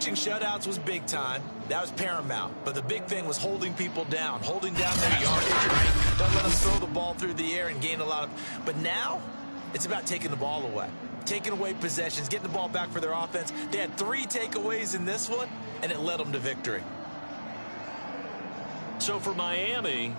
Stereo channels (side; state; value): both; inverted; correlation -1.00